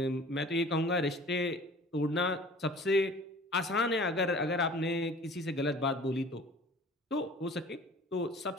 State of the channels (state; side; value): normal; both; correlation 0.46